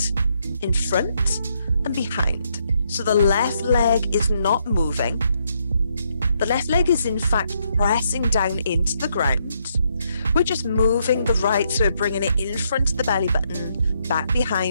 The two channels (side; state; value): both; inverted; correlation -0.75